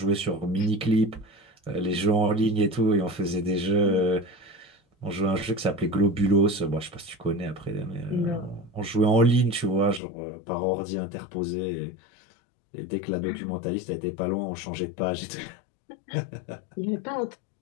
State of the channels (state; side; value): drops out; right; at 10.0 s